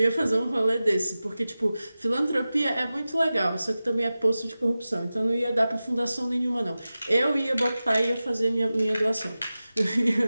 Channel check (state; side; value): inverted; both; correlation -0.95